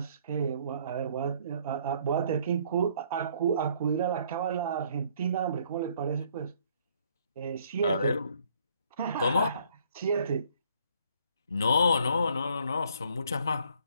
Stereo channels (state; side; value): inverted; both; correlation -0.63